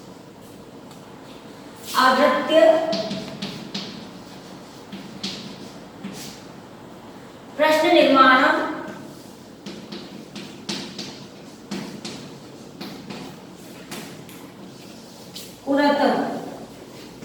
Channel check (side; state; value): both; identical; correlation 1.00